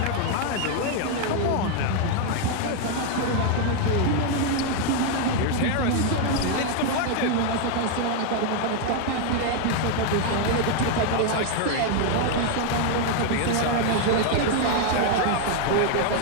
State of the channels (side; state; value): both; different; correlation 0.00